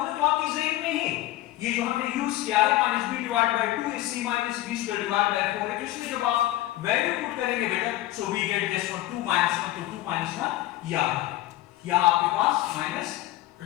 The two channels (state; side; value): quieter; right; 15.9 dB